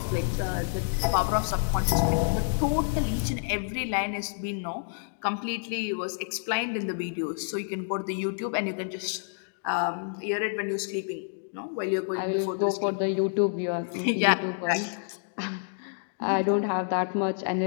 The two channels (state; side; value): silent; right; digital silence